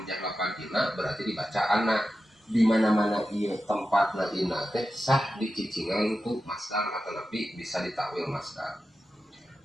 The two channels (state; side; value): normal; both; correlation 0.92